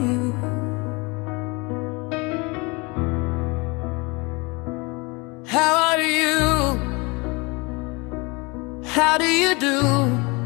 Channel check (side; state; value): right; quieter; 27.1 dB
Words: how are you? How do you do?